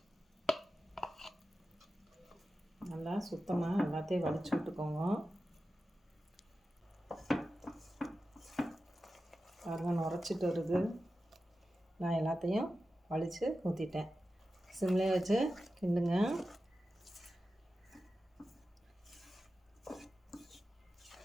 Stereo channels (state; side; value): normal; both; correlation 0.93